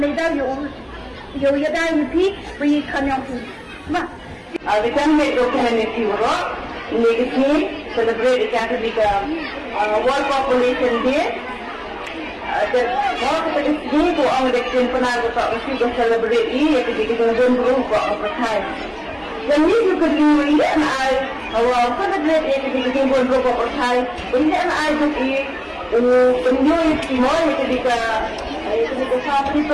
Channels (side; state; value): both; identical; correlation 1.00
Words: yo yada yupi bagi kanyang tu. Mah. Awitan me documentary bro. Ini celebrate ikan tu World Population Day. Dan kalau kita ini tu orang dektin pernah kita mesti celebrate ini ketika kita jumpa buat percaya. Dan ini juga ini I awal celebrate ketika kita jumpa buat percaya. Ini I juga penjual semua ketika sampai